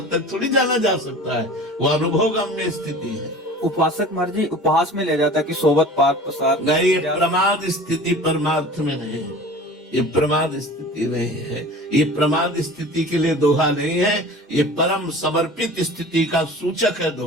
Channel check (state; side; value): normal; both; correlation 0.40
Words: तक थोड़ी जाना जा सकता है। वो अनुभवगम्य स्थिति है। उपासक महाराज जी उपहास में ले जाता है कि सोबत पार प्रसाद नहीं, ये प्रमाद स्थिति परमार्थ में नहीं है, ये प्रमाद स्थिति नहीं है। ये प्रमाद स्थिति के लिए दोहा नहीं है, ये परम समर्पित स्थिति का सूचक है